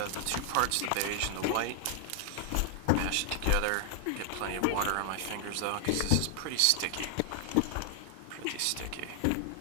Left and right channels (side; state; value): both; different; correlation 0.00